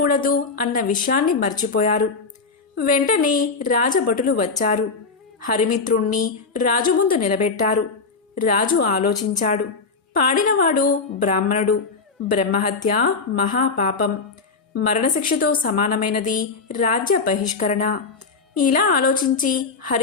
అన్న విషయాన్ని మర్చిపోయారు. వెంటనే రాజభటులు వచ్చారు. హరిమిత్రుణ్ణి రాజు ముందు నిలబెట్టారు. రాజు ఆలోచించాడు. పాడినవాడు బ్రాహ్మణుడు. బ్రహ్మహత్య మహాపాపం, మరణశిక్షతో సమానమైనది రాజ్య బహిష్కరణ. ఇలా ఆలోచించి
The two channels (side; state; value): right; quieter; 4.4 dB